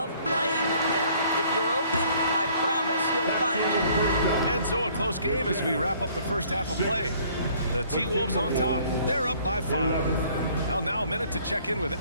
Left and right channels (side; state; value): both; inverted; correlation -0.58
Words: playing with him. If you're open, I promise he'll find you. And so a close game as we wrap up the first half of play. The T-Wolves on top. They're up by 5. Well, now a minute to check in with